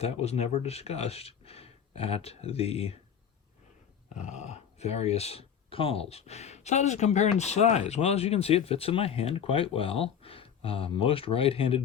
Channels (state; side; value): quieter; right; 8.1 dB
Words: was never discussed at the various calls. So how does it compare in size? Well, as you can see, it fits in my hand quite well. Most